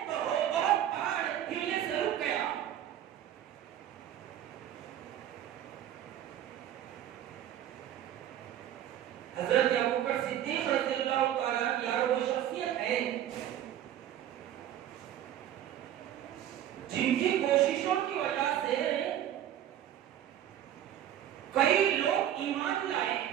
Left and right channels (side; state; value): left; quieter; 11.2 dB